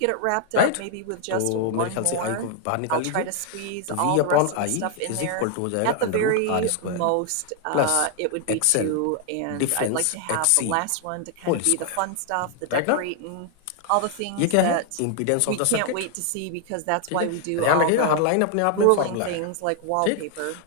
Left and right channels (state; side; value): different; both; correlation 0.00